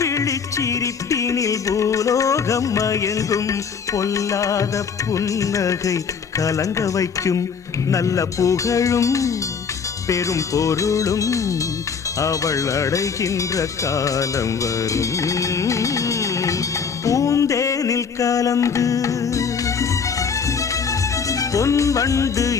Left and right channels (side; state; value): right; quieter; 6.1 dB